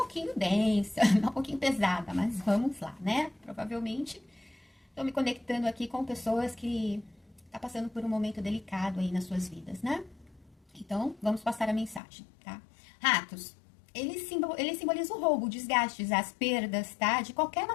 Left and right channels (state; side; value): drops out; right; at 12.0 s